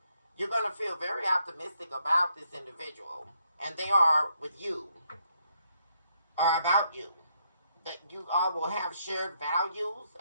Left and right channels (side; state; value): both; inverted; correlation -0.75